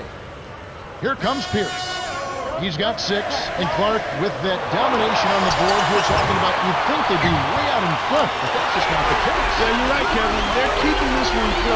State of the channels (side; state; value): both; identical; correlation 1.00